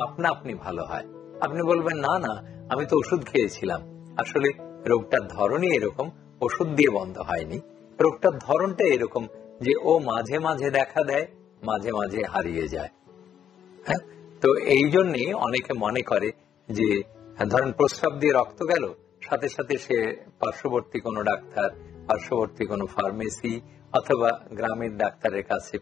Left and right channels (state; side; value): quieter; right; 9.1 dB